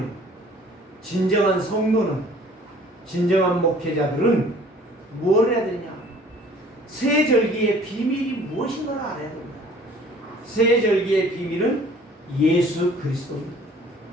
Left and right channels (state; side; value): normal; both; correlation 0.52